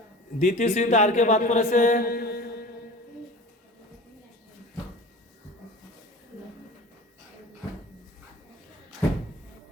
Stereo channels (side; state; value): both; normal; correlation 0.38